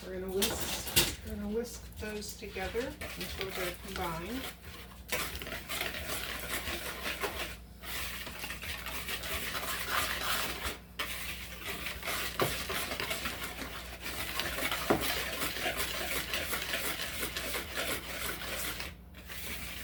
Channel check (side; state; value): both; identical; correlation 1.00